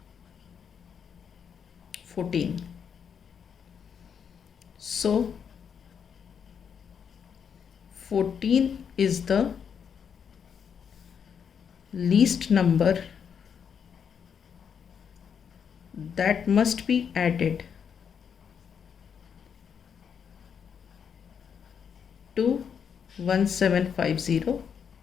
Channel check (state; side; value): quieter; right; 7.3 dB